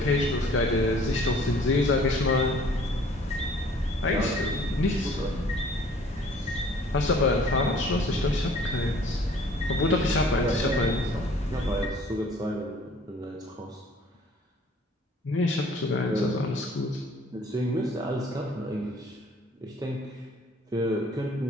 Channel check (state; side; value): normal; both; correlation 0.54